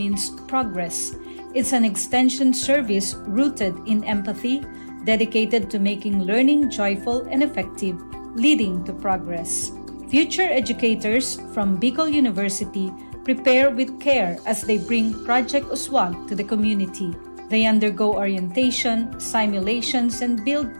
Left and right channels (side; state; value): both; inverted; correlation -1.00